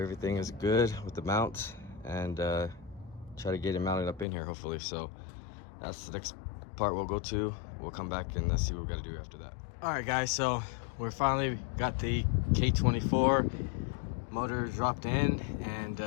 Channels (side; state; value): right; drops out; at 4.2 s